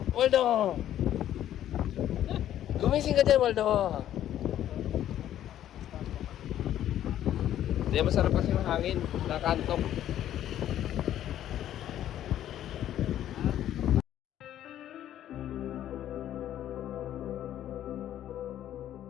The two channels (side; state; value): right; quieter; 11.7 dB